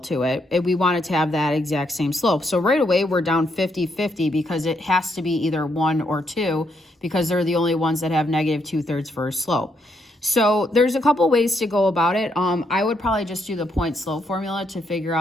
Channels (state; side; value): normal; both; correlation 0.76